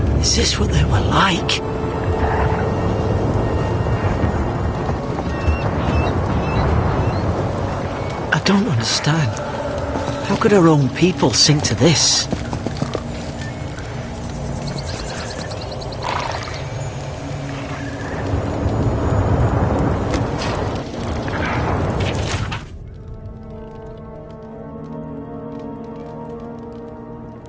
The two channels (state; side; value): identical; both; correlation 1.00